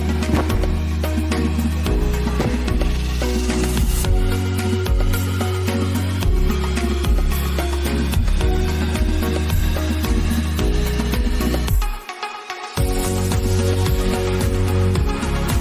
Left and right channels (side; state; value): both; identical; correlation 1.00